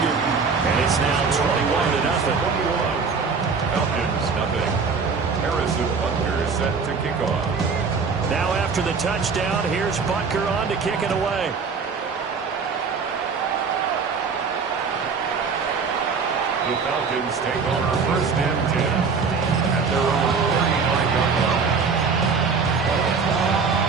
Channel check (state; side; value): quieter; left; 5.2 dB